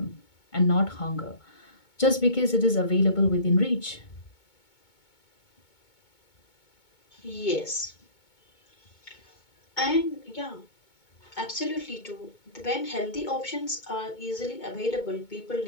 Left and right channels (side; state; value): right; late; 2.2 ms